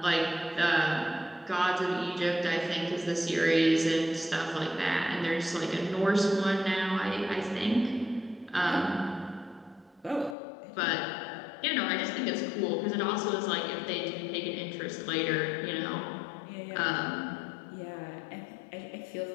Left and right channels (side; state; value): right; drops out; at 10.4 s